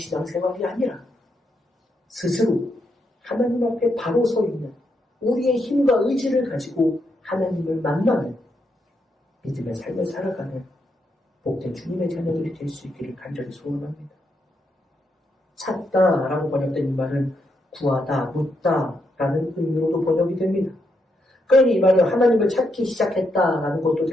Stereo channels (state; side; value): normal; both; correlation 0.80